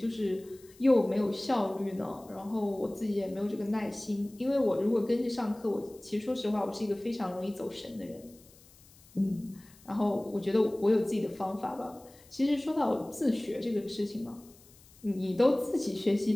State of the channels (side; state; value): left; noise; hiss, 25 dB below the sound